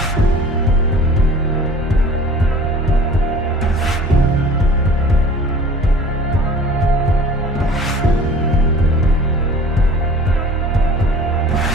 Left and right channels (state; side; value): normal; both; correlation 0.46